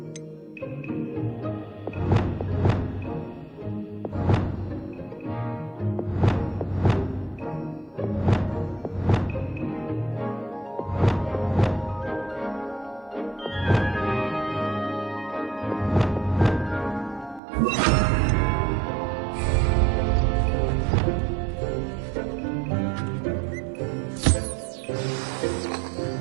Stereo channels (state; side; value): drops out; left; at 17.4 s